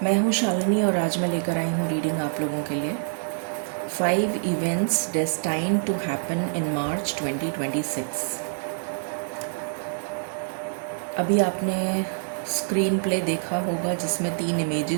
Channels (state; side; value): silent; left; digital silence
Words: मैं हूँ शालिनी और आज मैं लेकर आई हूँ रीडिंग आप लोगों के लिए 5 events destined to happen in मार्च 2026। अभी आपने स्क्रीन प्ले देखा होगा जिसमें 3